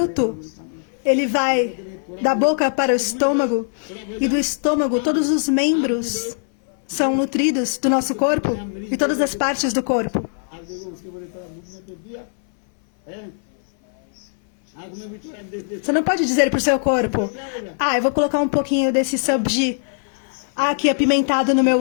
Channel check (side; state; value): right; silent; 60 dB below the other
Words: ele vai da boca para o estômago, e do estômago todos os membros são nutridos do nosso corpo e todas as partes do corpo. आप देखो उसके बड़े थोड़ा मुख में तो दिया है आग में भी थोड़ा देख देख Você não pode dizer para o seu corpo: eu vou colocar um pouquinho desse sabji aqui apimentado no meu